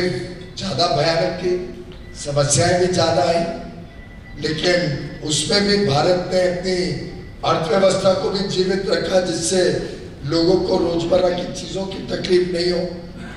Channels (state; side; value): identical; both; correlation 1.00